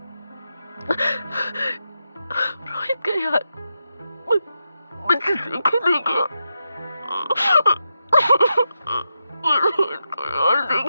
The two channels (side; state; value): both; inverted; correlation -0.86